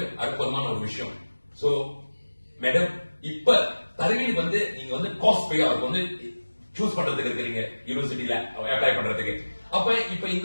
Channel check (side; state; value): both; inverted; correlation -1.00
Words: அற்புதமான ஒரு விஷயம். சோ மேடம், இப்ப தருவீனுக்கு வந்து நீங்க வந்து காஸ்ட் பே அவருக்கு வந்து சூஸ் பண்றதுக்கு இருக்கிறீங்க யூனிவர்சிட்டியில அப்ளை பண்றதுக்கு. அப்ப இப்ப